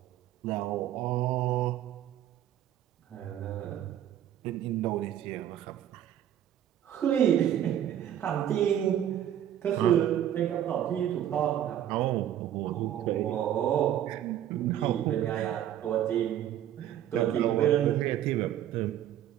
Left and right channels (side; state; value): left; quieter; 11.1 dB